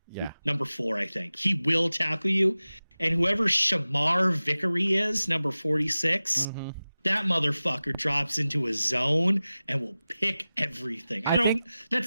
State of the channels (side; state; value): both; inverted; correlation -0.96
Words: Yeah. Number 4, I think. He will tackle you. And whoever Shamar Vickery is, number 46, that motherfucker drops into a zone and will pick everything.